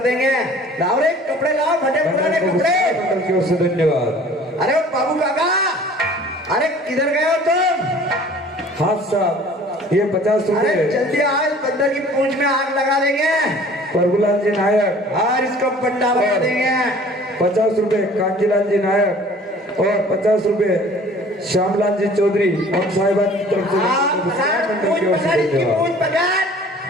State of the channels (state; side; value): normal; both; correlation 0.49